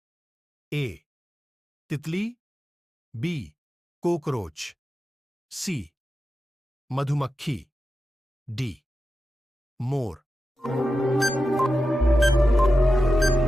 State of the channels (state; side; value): normal; both; correlation 0.91